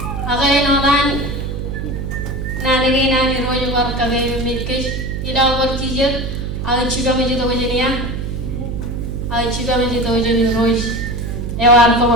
agai no dan nani nani rojo war kagai mitkesh ida war chije aga chiba me to wajiniya aga chiba me to wajini roj ewar ko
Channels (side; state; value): right; noise; hum, 4 dB below the sound